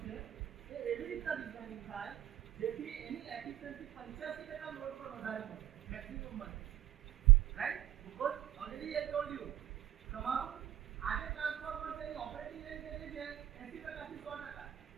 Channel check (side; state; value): left; quieter; 12.8 dB